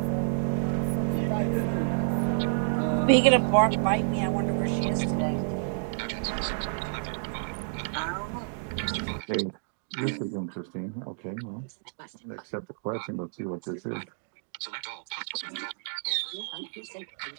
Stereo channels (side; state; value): left; silent; digital silence